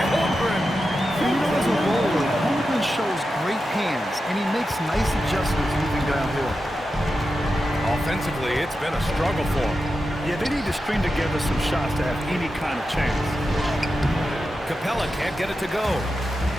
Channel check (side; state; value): both; normal; correlation 0.90